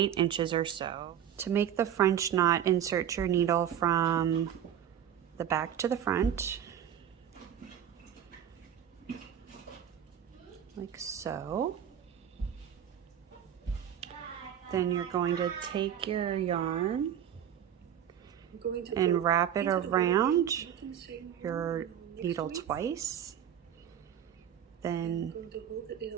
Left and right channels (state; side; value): quieter; left; 9.7 dB